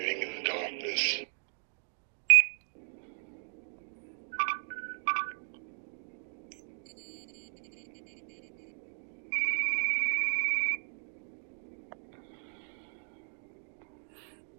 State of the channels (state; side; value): silent; left; digital silence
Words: in the darkness?